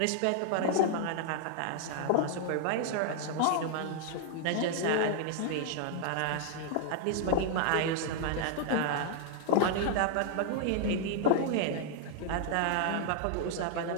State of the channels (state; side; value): different; both; correlation -0.01